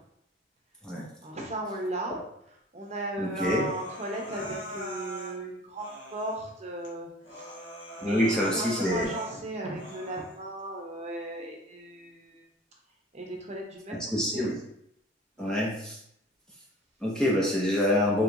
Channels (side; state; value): both; normal; correlation 0.46